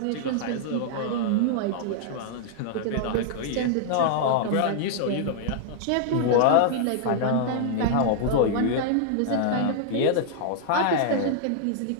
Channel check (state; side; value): different; both; correlation -0.01